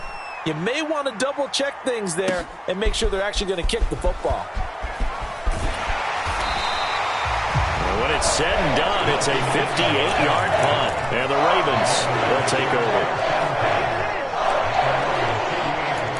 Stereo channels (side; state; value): both; identical; correlation 1.00